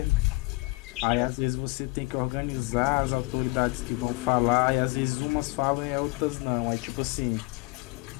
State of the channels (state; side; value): quieter; right; 25.4 dB